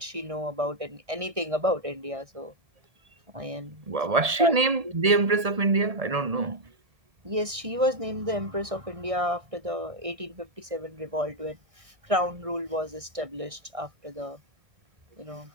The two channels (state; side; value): late; left; 1.7 ms